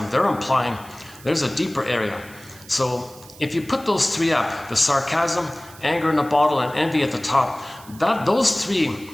they're implying there's a deeper area. So if you put those three up, the sarcasm, anger in a bottle, and envy at the top, those three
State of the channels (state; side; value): noise; right; hiss, 21 dB below the sound